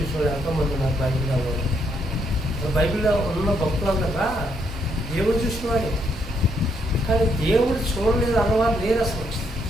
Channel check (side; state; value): both; normal; correlation 0.74